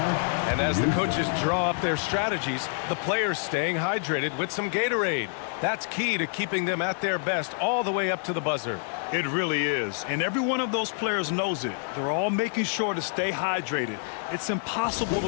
And as the coaches draw up their strategies, the players staying hydrated with some Gatorade. That's key to keeping them at their best all the way up to the buzzer. It really is, and every one of those players knows it. They're all making sure to stay hydrated. It's impossible to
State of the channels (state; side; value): silent; right; 58 dB below the other